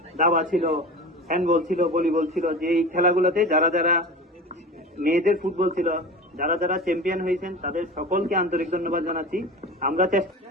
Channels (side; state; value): both; normal; correlation 0.32